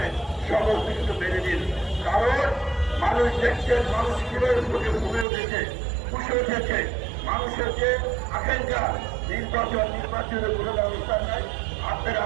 সমস্ত কিছু মেনে দিন, কারণ মানুষ দেখছেন মানুষ কিভাবে ঘুমে উঠেছে, খুশি উঠেছে। মানুষের যে আকাঙ্ক্ষা নির্বাচনের কোনো ব্যবস্থা নাই। আপনারা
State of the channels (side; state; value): left; drops out; at 5.2 s